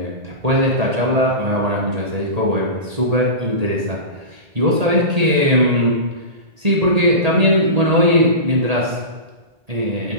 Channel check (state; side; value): late; left; 1.8 ms